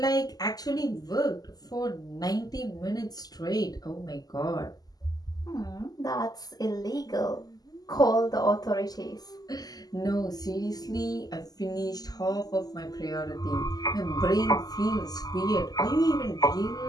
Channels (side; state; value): right; late; 0.18 ms